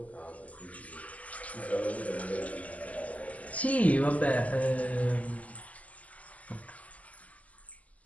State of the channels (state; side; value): late; right; 0.072 ms